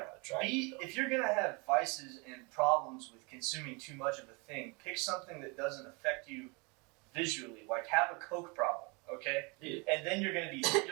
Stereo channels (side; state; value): left; quieter; 29.8 dB